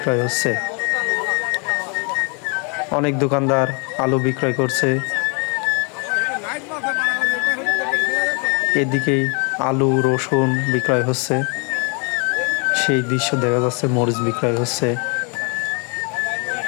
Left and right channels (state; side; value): quieter; right; 35.2 dB